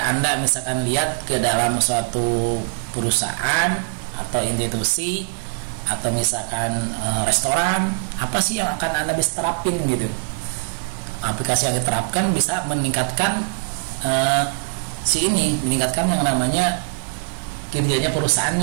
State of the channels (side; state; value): left; silent; digital silence